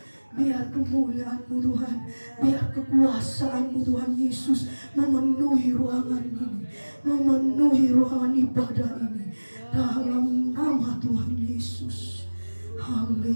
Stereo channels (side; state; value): both; inverted; correlation -1.00